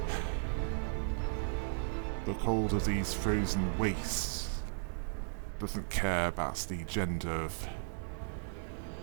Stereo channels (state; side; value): silent; left; digital silence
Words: The cold of these frozen wastes doesn't care about the gender of